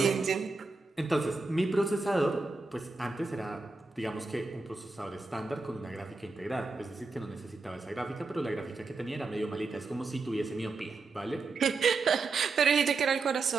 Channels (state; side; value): quieter; left; 3.9 dB